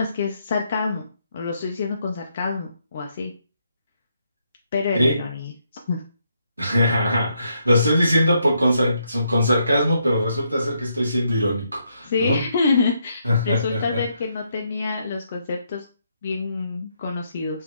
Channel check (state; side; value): inverted; both; correlation -0.76